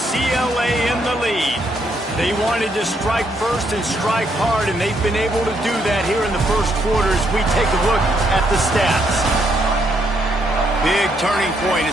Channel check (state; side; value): normal; both; correlation 0.74